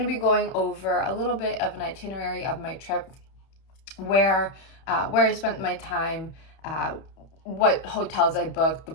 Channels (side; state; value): right; late; 31 ms